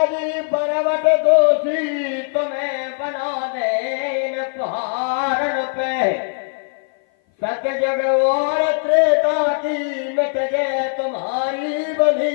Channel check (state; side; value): silent; right; 57 dB below the other